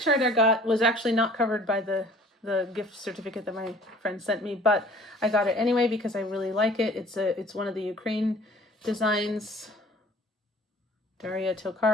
I got was actually not covered by the gift certificate that my friend sent me, but I got it anyway because I really like it. It's one of the Ukraine designs, Daria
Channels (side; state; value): both; normal; correlation 0.51